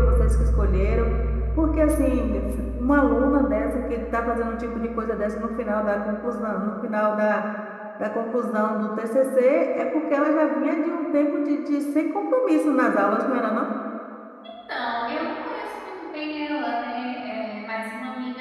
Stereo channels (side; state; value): both; identical; correlation 1.00